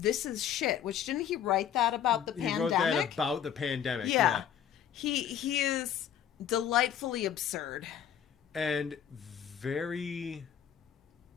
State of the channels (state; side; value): quieter; right; 9.3 dB